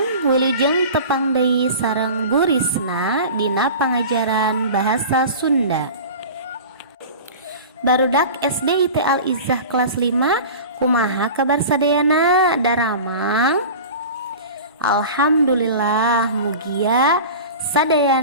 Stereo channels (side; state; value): both; inverted; correlation -0.36